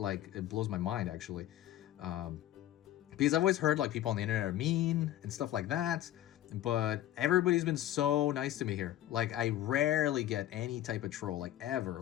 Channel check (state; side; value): quieter; right; 13.2 dB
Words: blows my mind actually. Because I've always heard like people on the internet are mean and stuff like that. But everybody's been so nice to me here. Like I rarely get any type of troll, like ever,